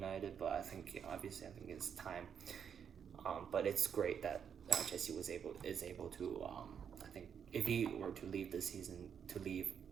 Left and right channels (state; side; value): quieter; left; 7.6 dB